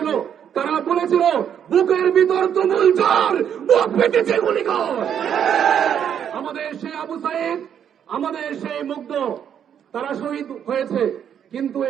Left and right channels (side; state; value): left; quieter; 8.8 dB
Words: তারা বলেছিল, বুকের ভিতর তুমুল ঝড়, বুক পেটেছে গুলি কর। আমাদের সেই আবু সাইদ, আমাদের সেই মুগ্ধ, তারা শহীদ হয়েছে, কিন্তু